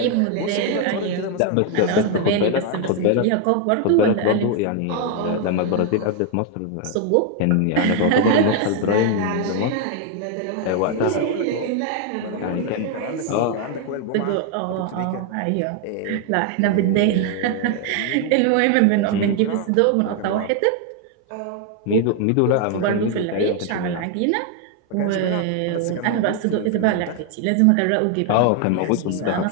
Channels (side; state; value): both; different; correlation 0.00